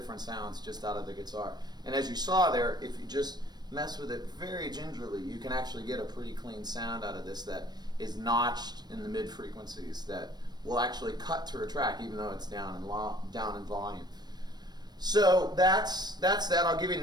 sounds just out of the guitar. And as you saw there, if you just mess with it very gingerly, you can actually get a pretty clean sound out of this that is notched in the mid frequencies that will actually cut through a track even though it's down in volume. So that's that. I'll give you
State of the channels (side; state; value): left; late; 0.20 ms